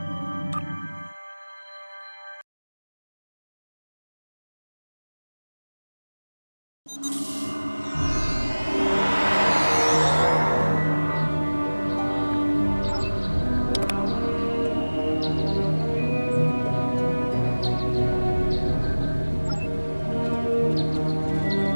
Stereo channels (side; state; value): both; inverted; correlation -1.00